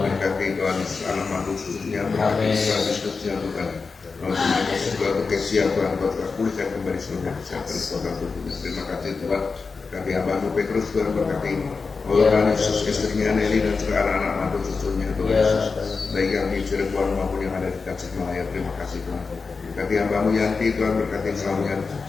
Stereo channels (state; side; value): quieter; right; 4.6 dB